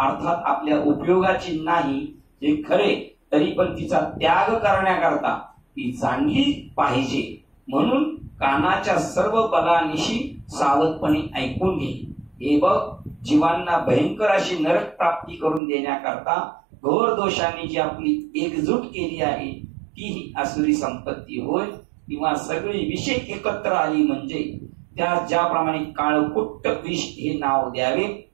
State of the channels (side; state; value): left; drops out; at 15.6 s